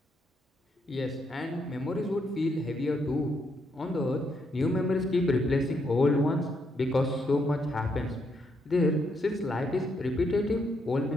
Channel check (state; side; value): normal; both; correlation 0.76